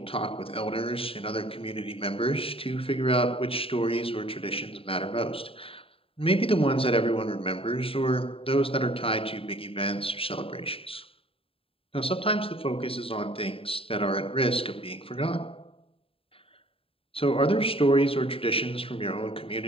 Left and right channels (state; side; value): late; right; 0.27 ms